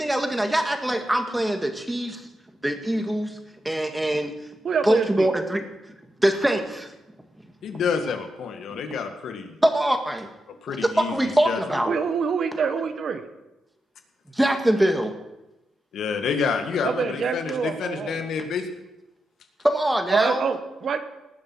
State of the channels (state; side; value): normal; both; correlation 0.87